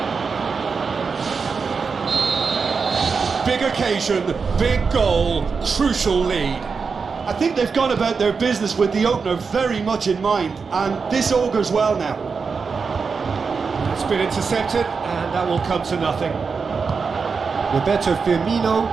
Big occasion, big goal, crucial lead. I think they've gone about their business with the opener very much in mind, and this augurs well now. It's been intercepted, and that will come to nothing. Roberto Firmino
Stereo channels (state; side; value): quieter; left; 5.2 dB